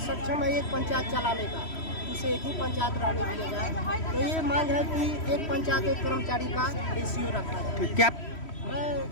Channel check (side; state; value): right; late; 3.1 ms